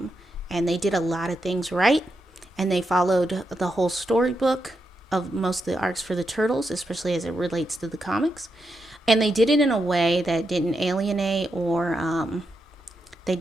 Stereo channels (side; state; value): both; normal; correlation 0.84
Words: And they did a lot of things right. And they followed the whole storybook of most of the arcs for the Turtles, especially as it relates to the comics. And they did it in a way that didn't alienate or they